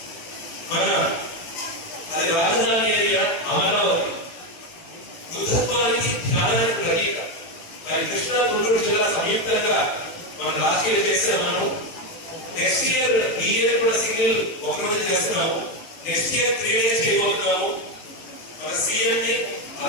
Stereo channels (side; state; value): right; late; 18 ms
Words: మన అది రాజధాని ఏరియా అమరావతి బుద్ధత్వానికి ధ్యానానికి ప్రతీక. మరి కృష్ణా గుంటూరు జిల్లా సంయుక్తంగా మనం లాస్ట్ ఇయర్ చేస్తాం. మనం నెక్స్ట్ ఇయర్ ఈ ఇయర్ కూడా సింగిల్ ఒకరోజు చేస్తున్నాము. నెక్స్ట్ ఇయర్ 3 days చేయబోతున్నాము. మన సీఎం ని